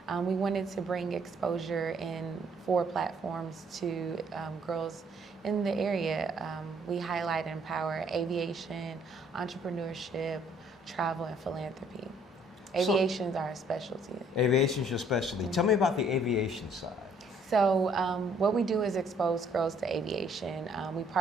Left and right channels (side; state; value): both; normal; correlation 0.63